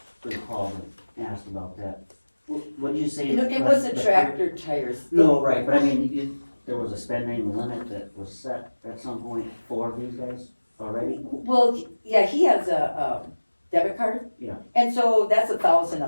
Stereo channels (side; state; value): both; inverted; correlation -1.00